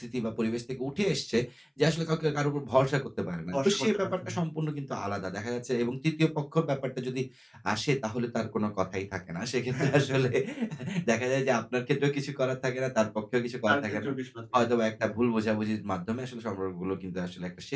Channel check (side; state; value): both; identical; correlation 1.00